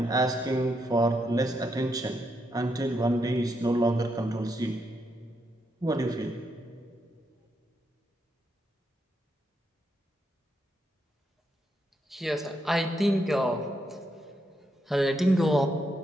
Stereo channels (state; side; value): normal; both; correlation 0.80